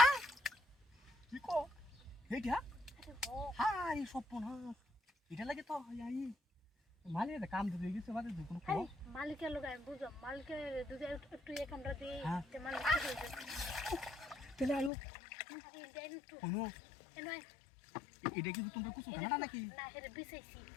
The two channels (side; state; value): right; drops out; at 14.9 s